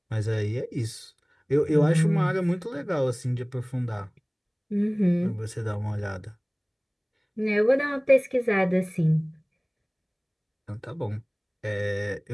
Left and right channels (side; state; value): both; identical; correlation 1.00